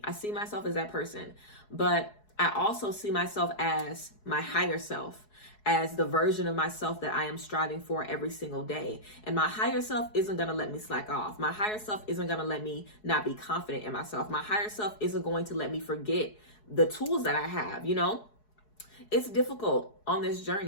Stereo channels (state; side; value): late; right; 4.7 ms